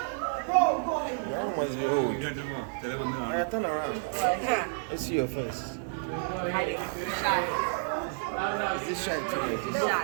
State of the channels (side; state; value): left; silent; 57 dB below the other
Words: That one must be old. Alright, turn around. Let's see your face. Hiding. Shy. Is this shy too? Like this?